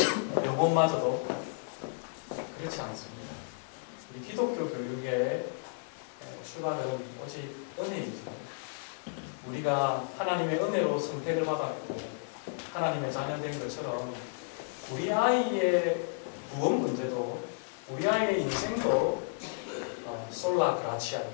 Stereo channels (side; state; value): right; silent; digital silence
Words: 영혼마저도 그렇지 않습니다. 우리 기독교 교육의 출발은 오직 은혜이죠. 우리가 하나님의 은혜로 선택을 받았고 하나님의 자녀된 것처럼 우리 아이의 구원 문제도 우리 아이의 인생도 솔라